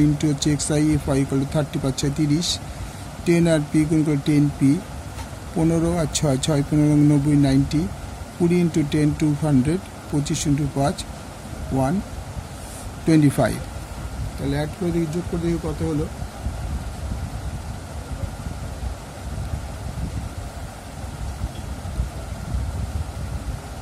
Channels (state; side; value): identical; both; correlation 1.00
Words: ইন্টু হচ্ছে xi fi = 30 5 6 30, 10 আর p গুণ করে 10p, 15 আর 6 6 15 90 90, 20 ইন্টু 10 200, 25 ইন্টু 5 125। তাহলে অ্যাড করে দেখি, যোগ করে দেখি কত হলো।